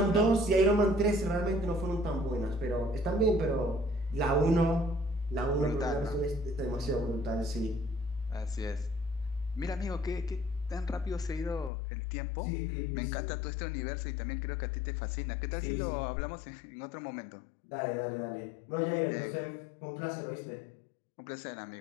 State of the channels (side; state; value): right; drops out; at 11.7 s